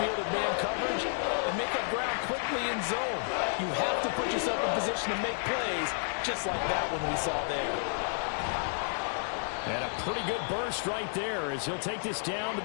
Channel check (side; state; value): right; silent; digital silence